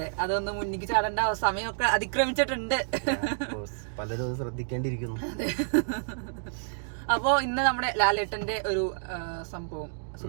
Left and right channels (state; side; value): silent; left; digital silence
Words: അതൊന്ന് മുന്നിക്ക് ചാടേണ്ട സമയമൊക്കെ അതിക്രമിച്ചിട്ടുണ്ട്. പലരും ശ്രദ്ധിക്കേണ്ടിയിരിക്കുന്നു. അപ്പോ ഇന്ന് നമ്മുടെ ലാലേട്ടന്റെ ഒരു സംഭവം,